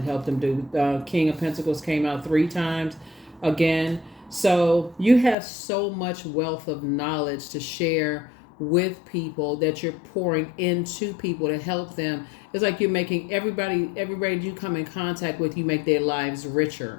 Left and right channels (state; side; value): drops out; right; at 5.4 s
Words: help them do. King of Pentacles came out 3 times again. So you have so much wealth of knowledge to share with people that you're pouring into people to help them. It's like you're making everybody you come in contact with, you make their lives